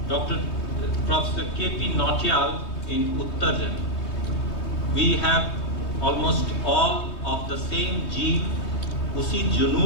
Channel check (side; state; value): right; late; 3.2 ms